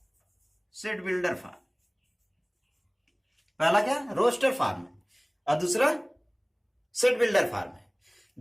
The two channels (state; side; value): identical; both; correlation 1.00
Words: set builder form. पहला क्या, रोस्टर फॉर्म है, और दूसरा सेट बिल्डर फॉर्म है।